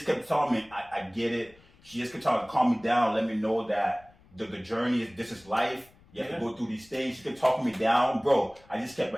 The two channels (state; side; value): noise; left; rumble, 28 dB below the sound